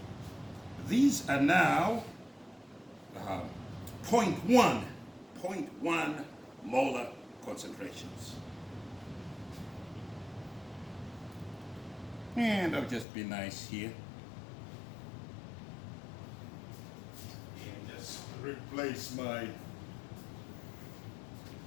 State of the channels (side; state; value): right; drops out; at 13.1 s